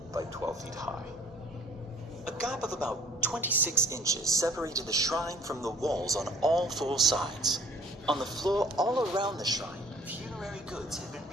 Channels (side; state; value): both; normal; correlation 0.55